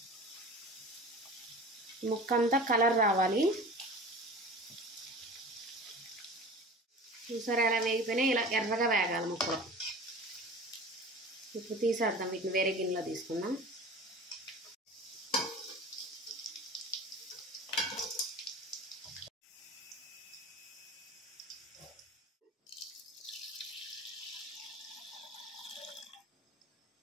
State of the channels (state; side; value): normal; both; correlation 0.37